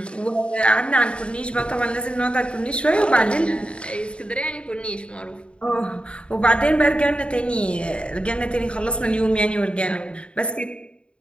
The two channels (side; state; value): right; late; 0.056 ms